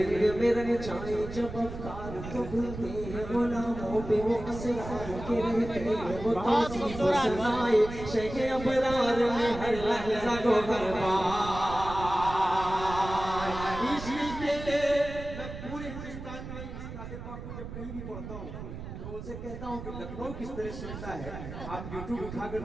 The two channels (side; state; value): right; noise; rumble, 10 dB below the sound